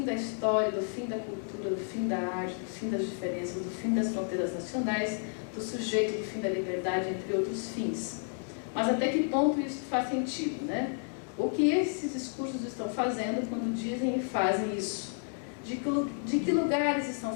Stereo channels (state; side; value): silent; right; 57 dB below the other